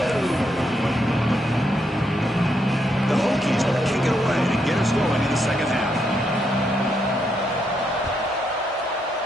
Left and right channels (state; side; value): normal; both; correlation 0.78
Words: The Hokies will kick it away to get us going in the 2nd half.